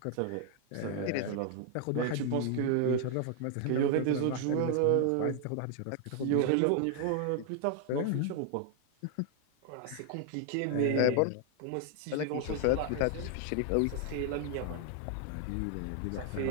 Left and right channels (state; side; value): different; both; correlation 0.00